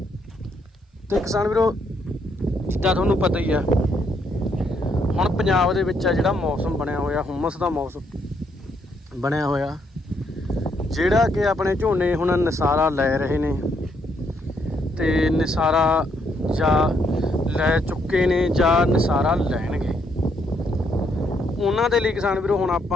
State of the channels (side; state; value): both; normal; correlation 0.74